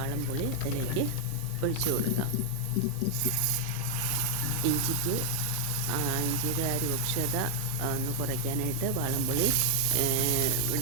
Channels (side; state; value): both; different; correlation 0.00